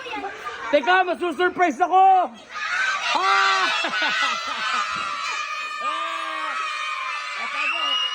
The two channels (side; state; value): both; identical; correlation 1.00